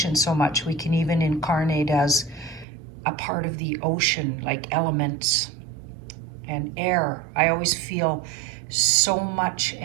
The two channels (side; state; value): left; drops out; at 2.7 s